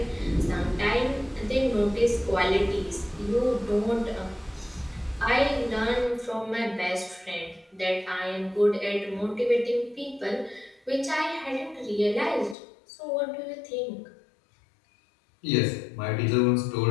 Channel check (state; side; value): drops out; right; at 12.6 s